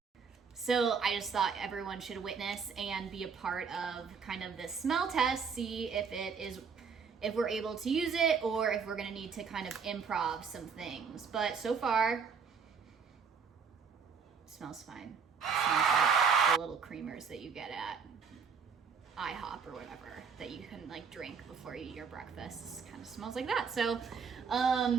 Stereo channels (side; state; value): left; quieter; 6.0 dB